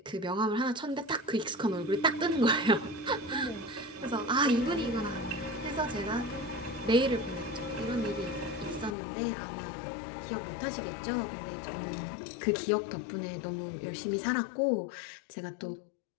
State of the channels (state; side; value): drops out; right; at 9.0 s